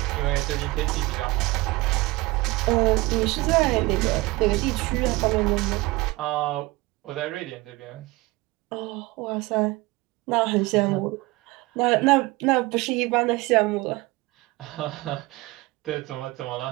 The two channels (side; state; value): left; quieter; 21.7 dB